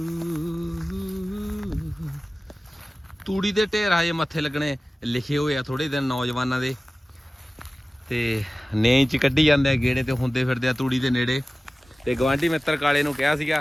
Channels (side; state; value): both; normal; correlation 0.97